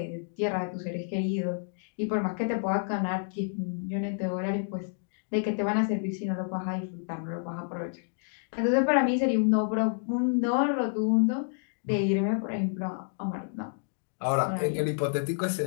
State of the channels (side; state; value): right; silent; digital silence